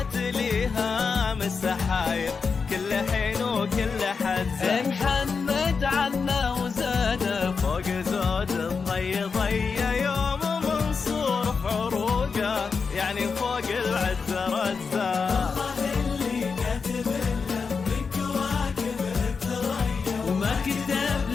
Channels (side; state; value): right; quieter; 5.2 dB